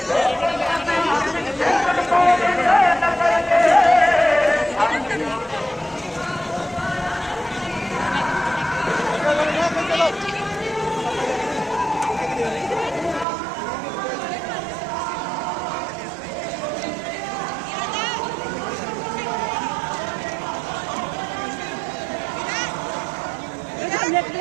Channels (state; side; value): drops out; left; at 13.2 s